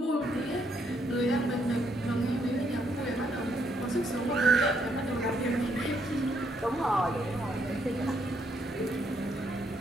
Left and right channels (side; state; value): both; normal; correlation 0.73